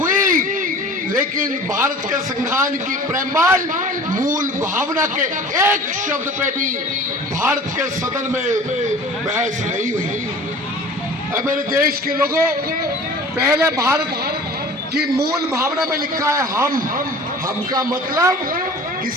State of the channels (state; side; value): normal; both; correlation 0.43